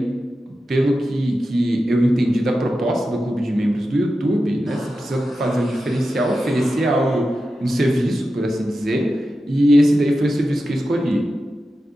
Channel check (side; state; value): both; normal; correlation 0.91